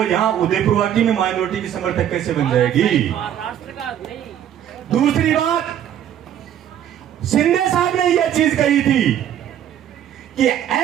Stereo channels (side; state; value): left; quieter; 10.3 dB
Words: यहाँ उदयपुर वाटी में माइनॉरिटी की समर्थक कैसे बन जाएगी? दूसरी बात, शिंदे साहब ने यह चीज कही थी कि